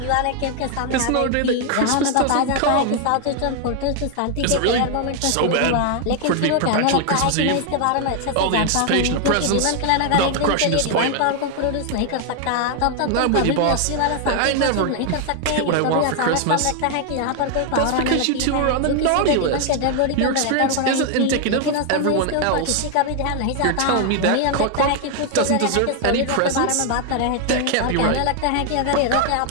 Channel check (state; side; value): different; both; correlation 0.00